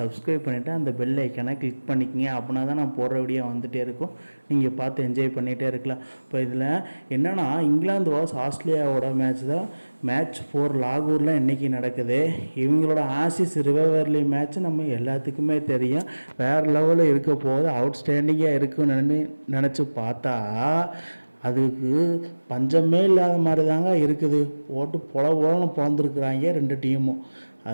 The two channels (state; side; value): inverted; both; correlation -1.00